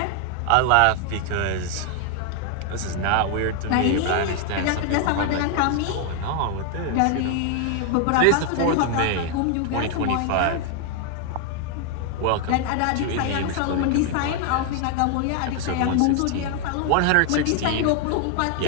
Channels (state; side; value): different; both; correlation 0.00